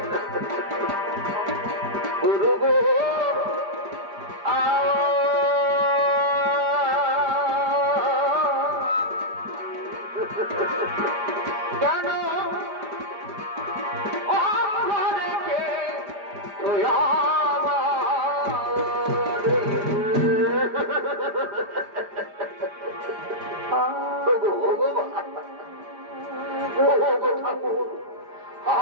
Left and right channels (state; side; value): late; left; 4.9 ms